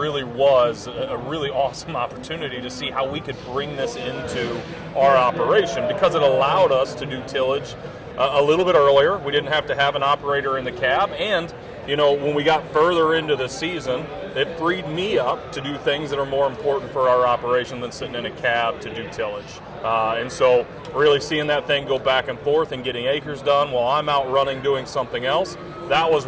was a really awesome opportunity to see how we could bring this into our operation, because it allowed us to do tillage a little bit earlier. We didn't have to have an operator in the cab, and when we got further into the season, it freed me up to do things that are more important for our operation than sitting in a cab to do tillage. And so really seeing that thing go back and forth and getting acres done while I'm out running doing something else, that was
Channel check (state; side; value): identical; both; correlation 1.00